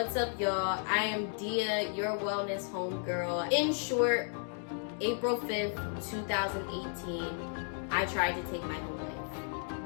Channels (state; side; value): silent; right; 55 dB below the other